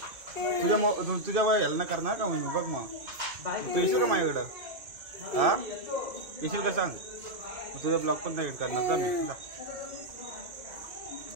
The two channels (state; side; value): late; left; 2.5 ms